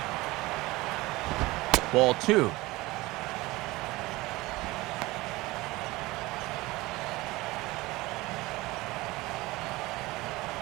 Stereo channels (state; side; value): quieter; left; 20.4 dB